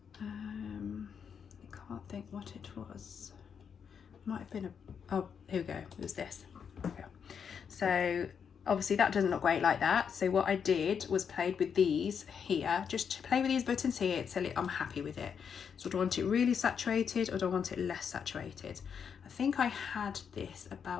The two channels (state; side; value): quieter; right; 7.0 dB